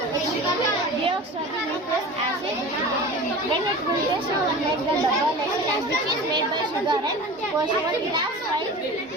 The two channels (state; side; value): normal; both; correlation 0.35